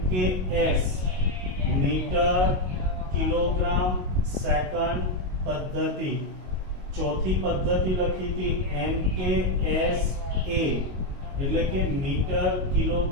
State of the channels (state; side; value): late; left; 22 ms